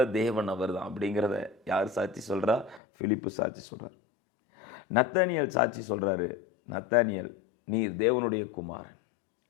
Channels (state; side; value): drops out; right; at 2.8 s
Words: தேவன் அவர் தான் அப்படிங்கிறத யார் சாட்சி சொல்றா? பிலிப்பு சாட்சி சொல்றார். நத்தானியல் சாட்சி சொல்றாரு. நத்தானியல், நீர் தேவனுடைய குமாரன்.